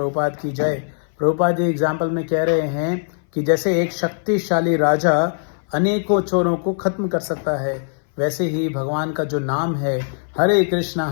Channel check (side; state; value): right; silent; 59 dB below the other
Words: की जय। प्रभुपाद जी एग्जाम्पल में कह रहे हैं कि जैसे एक शक्तिशाली राजा अनेकों चोरों को खत्म कर सकता है, वैसे ही भगवान का जो नाम है हरे